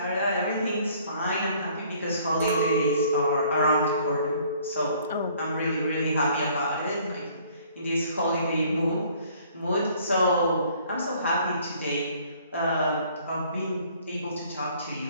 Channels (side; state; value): both; inverted; correlation -0.58